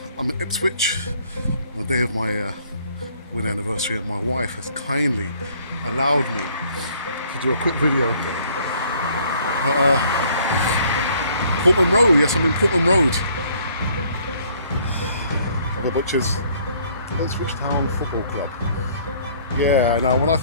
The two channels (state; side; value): inverted; both; correlation -0.61